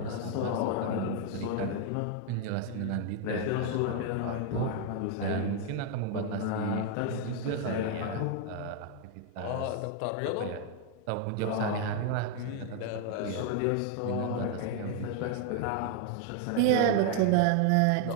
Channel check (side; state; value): both; different; correlation 0.00